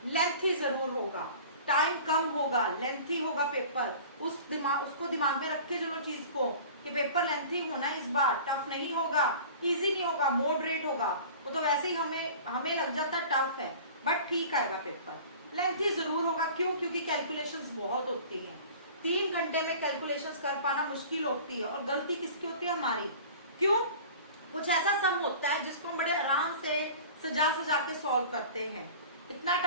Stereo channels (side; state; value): both; inverted; correlation -0.42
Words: लेंथी जरूर होगा, टाइम कम होगा, लेंथी होगा पेपर। उसको दिमाग में रखे चलो चीज को, कि पेपर लेंथी होना इस बार, टफ नहीं होगा, इजी नहीं होगा, मॉडरेट होगा। वो तो वैसे ही हमें लग जाता टफ है, बट ठीक आएगा पेपर, लेंथी जरूर होगा। क्यों? क्योंकि कैलकुलेशंस बहुत होती हैं, 3 घंटे में कैलकुलेशंस कर पाना मुश्किल होती है, और गलती किसकी होती है, हमारी। क्यों? कुछ ऐसा सम होता है जिसको हम बड़े आराम से सजा सजा के सॉल्व करते हैं, इतना